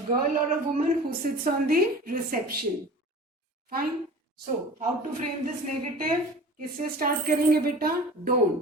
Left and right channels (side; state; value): both; normal; correlation 0.39